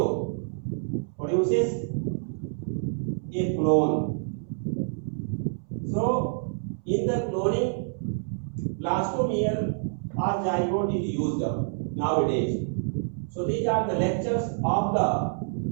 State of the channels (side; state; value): left; silent; 59 dB below the other